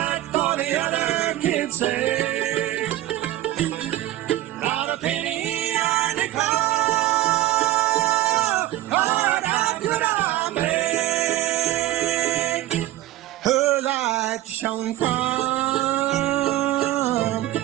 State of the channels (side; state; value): left; quieter; 15.2 dB